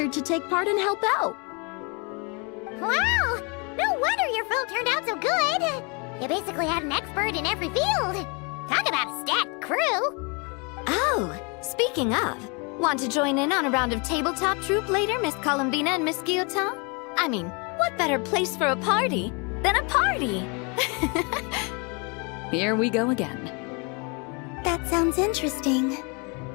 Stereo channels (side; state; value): right; quieter; 32.5 dB